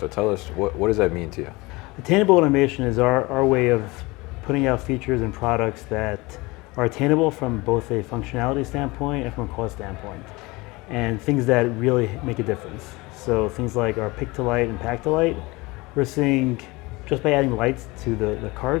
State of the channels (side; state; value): right; quieter; 23.3 dB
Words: So tell us, what does that mean to you? Attainable automation is our way of putting out features and products that are attainable from both a functionality standpoint and from a cost standpoint, and things that really make a difference. So things like our pick to light and pack to light, we're seeing just by adding lights to the